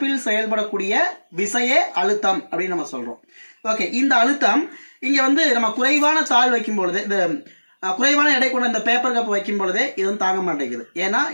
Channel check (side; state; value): both; inverted; correlation -1.00